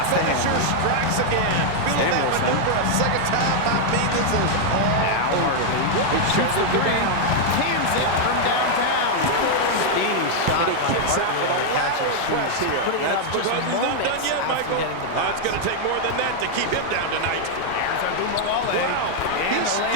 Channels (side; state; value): both; different; correlation 0.00